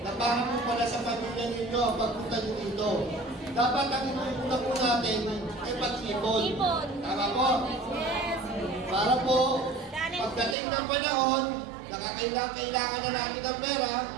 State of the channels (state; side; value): drops out; left; at 10.6 s